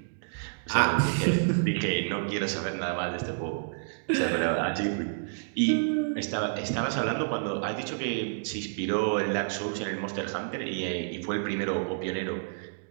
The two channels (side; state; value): left; silent; digital silence